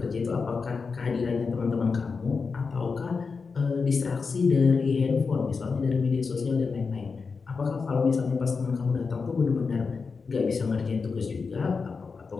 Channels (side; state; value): right; quieter; 4.9 dB